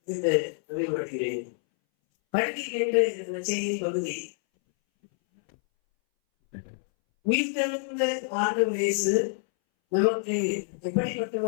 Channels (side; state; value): right; silent; 60 dB below the other